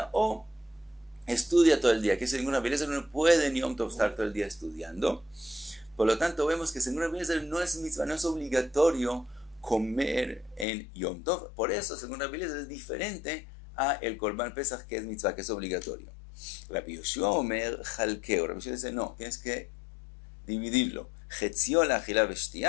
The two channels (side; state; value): right; drops out; at 10.7 s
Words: o estudia todo el día. Que según Rabbi Eliezer no puede en Yom Tov estar todo el día estudiando. Por lo tanto, vemos que según Rabbi Eliezer no es mitzvah, no es obligatorio comer en Yom Tov. Por eso, según Rabbi Eliezer, es diferente a el Korban Pesach, que es mitzvah, que es obligatorio. Rabbi Yoshua Omer Jalkeo. Rabbi Yoshua dice, no, tienes que dividirlo. Chetzio la achila